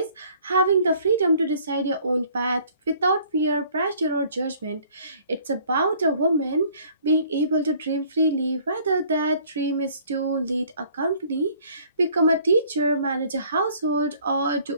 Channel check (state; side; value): inverted; both; correlation -0.57